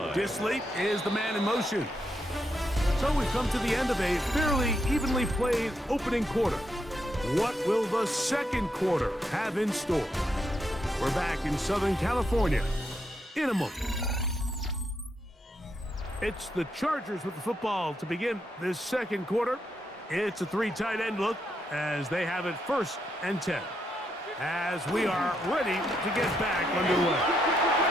Disley is the man in motion. So we've come to the end of a fairly evenly played opening quarter. What will the second quarter have in store? We're back in Southern California in a moment. It's the Chargers with the football to begin this second quarter. It's a 3 tight end look as they have it 1st and 10. As we are ready to get back underway.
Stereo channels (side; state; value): both; normal; correlation 0.80